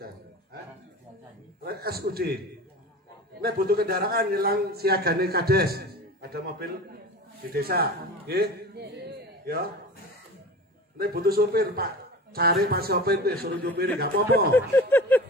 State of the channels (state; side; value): normal; both; correlation 0.34